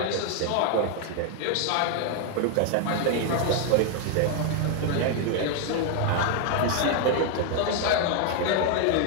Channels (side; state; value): both; different; correlation 0.00